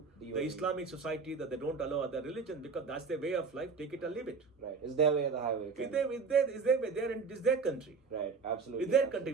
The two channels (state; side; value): quieter; left; 5.1 dB